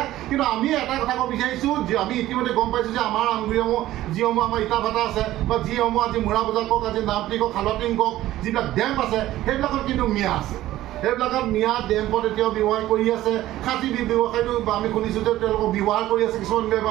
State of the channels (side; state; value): left; quieter; 14.9 dB